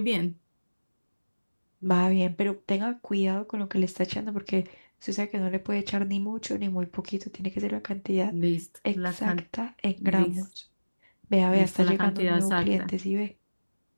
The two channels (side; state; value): both; inverted; correlation -1.00